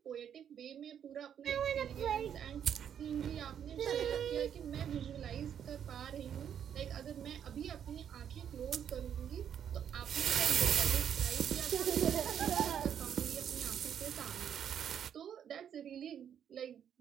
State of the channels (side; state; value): left; quieter; 8.9 dB